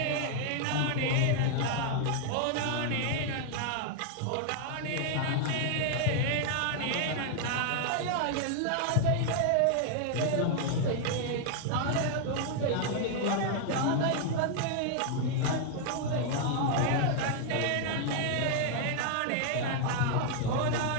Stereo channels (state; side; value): different; both; correlation 0.00